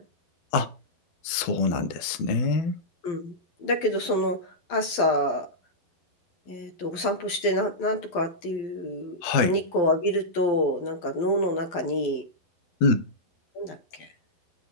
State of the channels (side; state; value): right; late; 12 ms